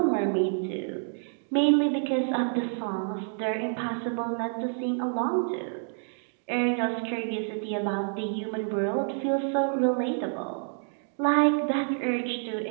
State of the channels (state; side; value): silent; left; 59 dB below the other